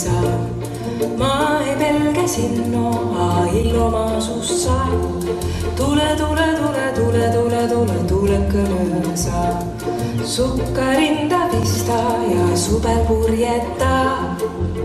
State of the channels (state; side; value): identical; both; correlation 1.00